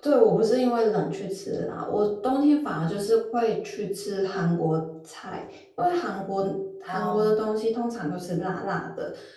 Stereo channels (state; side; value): identical; both; correlation 1.00